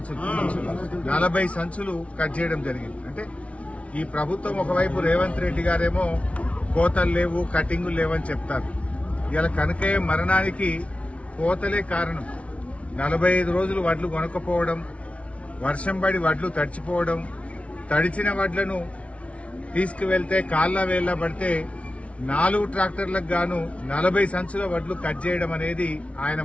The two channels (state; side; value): late; right; 0.063 ms